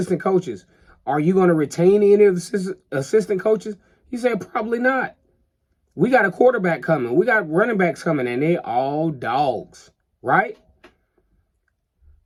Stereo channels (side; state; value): both; identical; correlation 1.00